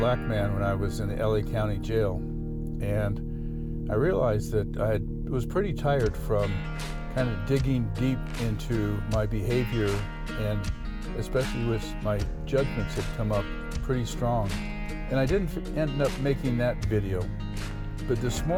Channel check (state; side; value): identical; both; correlation 1.00